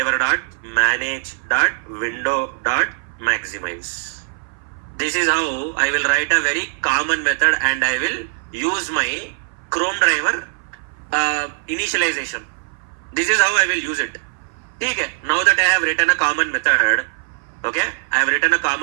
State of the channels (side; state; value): left; silent; 59 dB below the other